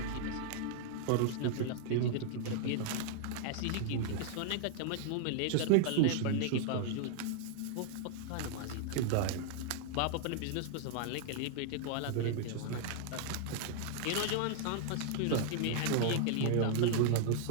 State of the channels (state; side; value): different; both; correlation -0.01